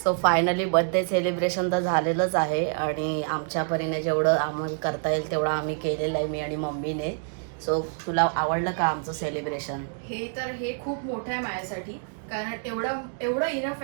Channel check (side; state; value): left; silent; 60 dB below the other